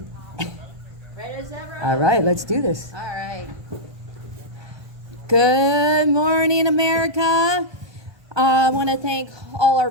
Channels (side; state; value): left; late; 1.2 ms